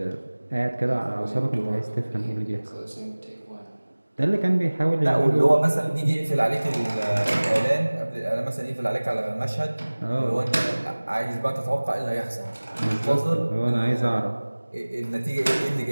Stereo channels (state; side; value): inverted; both; correlation -1.00